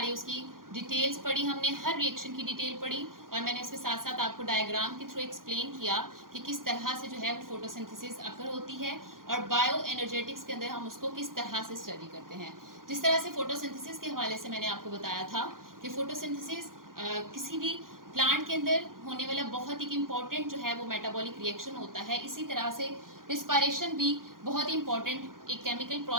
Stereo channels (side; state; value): left; late; 0.91 ms